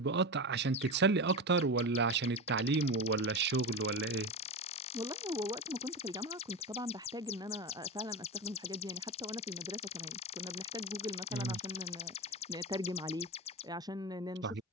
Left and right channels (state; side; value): normal; both; correlation 0.21